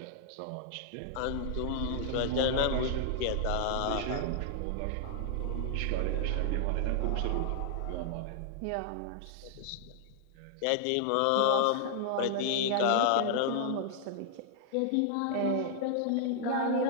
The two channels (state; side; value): different; both; correlation -0.01